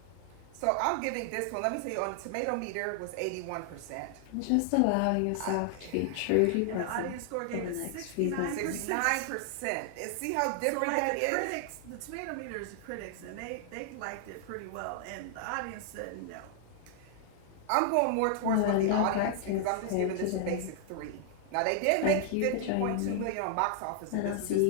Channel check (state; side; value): different; both; correlation 0.00